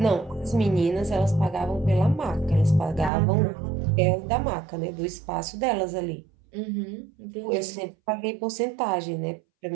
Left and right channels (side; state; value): left; drops out; at 3.1 s